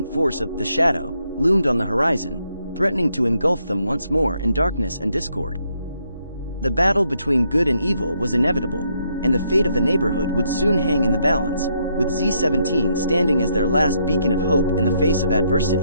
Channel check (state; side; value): inverted; both; correlation -0.75